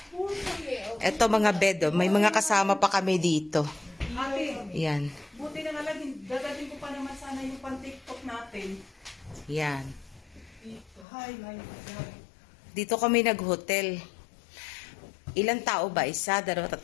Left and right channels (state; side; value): drops out; right; at 11.1 s